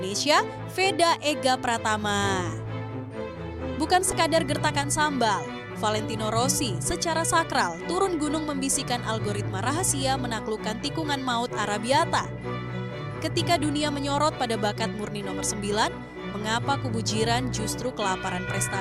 Veda Ega Pratama. Bukan sekadar gertakan sambal, Valentino Rossi secara sakral turun gunung membisikkan algoritma rahasia menaklukkan tikungan maut Arabiata. Ketika dunia menyorot pada bakat murni nomor 9, mengapa kubu jiran justru kelaparan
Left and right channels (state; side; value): identical; both; correlation 1.00